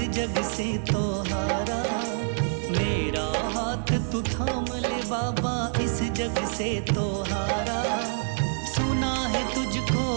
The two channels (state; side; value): silent; left; 60 dB below the other